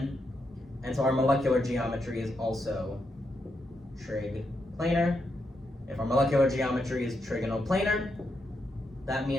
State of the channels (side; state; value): both; normal; correlation 0.82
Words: and so our molecular geometry is also trig planar. If our molecular geometry is trigonoplanar, that